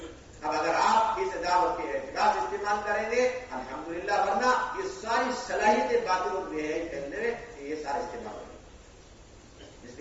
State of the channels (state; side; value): identical; both; correlation 1.00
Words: اب اگر آپ اس دعوت کے اعتراض استعمال کریں گے الحمدللہ, ورنہ یہ ساری صلاحیتیں باطل اور بے حیائی پھیلنے میں یہ سارے استعمال ہوں گے. اس